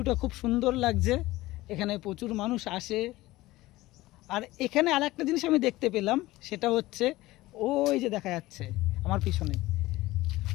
খুব সুন্দর লাগছে, এখানে প্রচুর মানুষ আসে। আর এখানে আরেকটা জিনিস আমি দেখতে পেলাম, সেটা হচ্ছে ওই যে দেখা যাচ্ছে আমার পিছনে,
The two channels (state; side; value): quieter; right; 18.2 dB